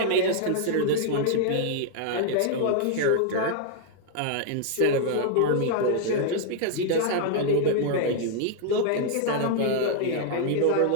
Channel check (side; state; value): both; different; correlation 0.00